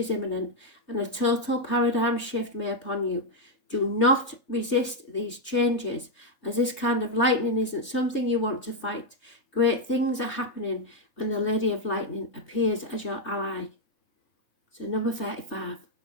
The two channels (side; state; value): right; late; 3.3 ms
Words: imminent and a total paradigm shift may upon you. Do not resist these changes, as this kind of lightning isn't something you want to fight. Great things are happening when the Lady of Lightning appears as your ally. So number 35,